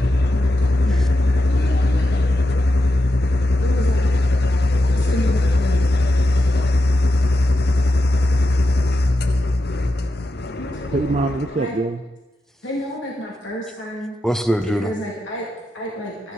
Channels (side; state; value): both; normal; correlation 0.89